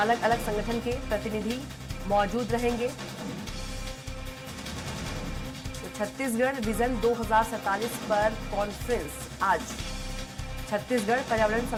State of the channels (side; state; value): both; identical; correlation 1.00